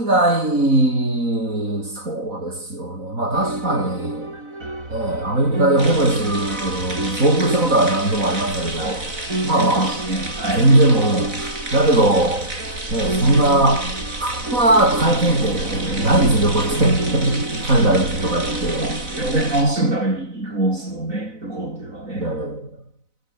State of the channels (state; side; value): late; left; 4.0 ms